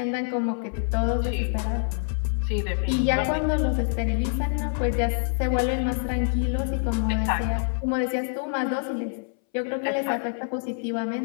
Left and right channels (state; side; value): silent; right; 61 dB below the other